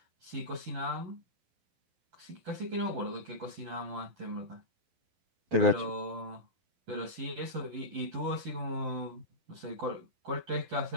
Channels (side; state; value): left; late; 12 ms